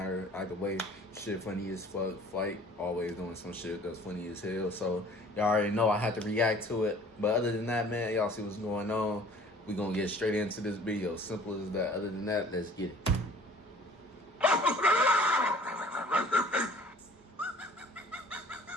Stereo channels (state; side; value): normal; both; correlation 0.51